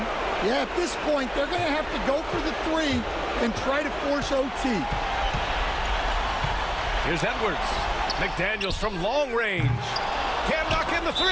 Yeah, at this point, they're going to have to go for the 3 and try to force OT. Here's Edwards. McDaniels from long range. Can't knock in the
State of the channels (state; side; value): identical; both; correlation 1.00